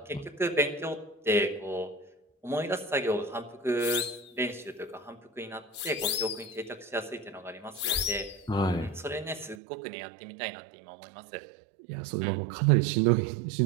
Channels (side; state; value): left; drops out; at 9.6 s